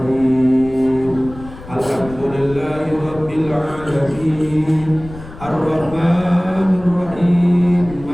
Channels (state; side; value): noise; left; rumble, 16 dB below the sound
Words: Alhamdulillahi rabbil alamin. Ar-Rahmanir Rahim.